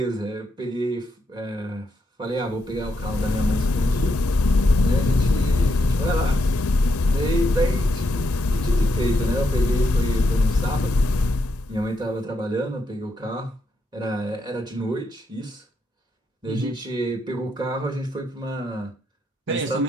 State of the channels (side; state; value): both; normal; correlation 0.80